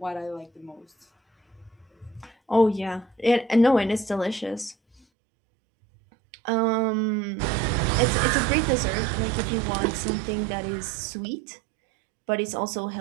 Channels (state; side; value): drops out; left; at 5.0 s